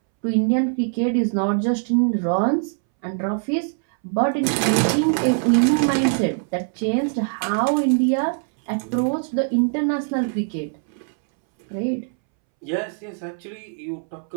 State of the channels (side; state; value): left; silent; 64 dB below the other